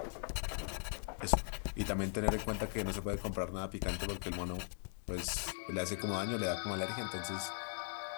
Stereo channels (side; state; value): right; silent; 51 dB below the other